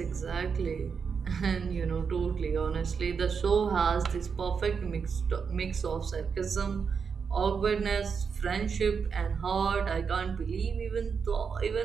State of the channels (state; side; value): quieter; left; 6.0 dB